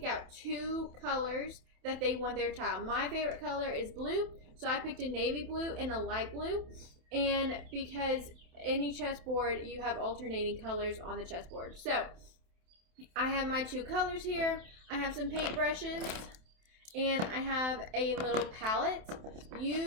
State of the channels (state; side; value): late; left; 27 ms